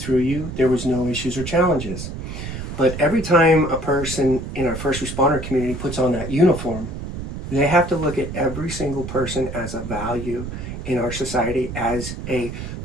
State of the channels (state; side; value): noise; right; rumble, 8 dB below the sound